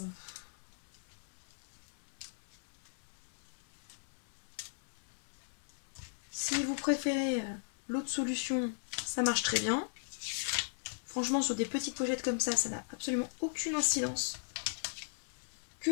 Si vous préférez l'autre solution, ça marche très bien. Franchement, sur des petites pochettes comme ça n'a absolument aucune incidence. Que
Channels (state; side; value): silent; right; 53 dB below the other